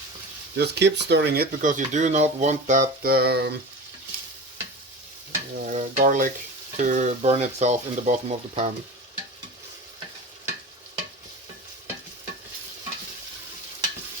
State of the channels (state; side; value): normal; both; correlation 0.32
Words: Just keep stirring it because you do not want that garlic to burn itself in the bottom of the pan.